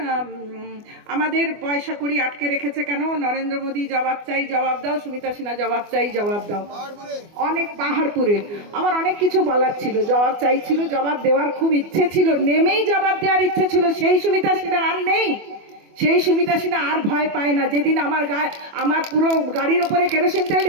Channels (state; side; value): late; left; 24 ms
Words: আমাদের পয়সা করি আটকে রেখেছে কেন, নরেন্দ্র মোদী জবাব চাই জবাব দাও, সুমিতা সিনহা জবাব চাই জবাব দাও, অনেক পাহাড়পুরে। আমার অনেক কিছু বলার ছিল, জবাব চাইছিল, জবাব দেওয়ার খুব ইচ্ছে ছিল, নেমেই জবাব দেওয়ার ইচ্ছে ছিল। সেই সুমিতা সিনহা আর নেই, সেই সুমিতা সিনহা আর ভয় পায় না। যেদিন আমার পুরো গাড়ির ওপরে কেরোসিন তেল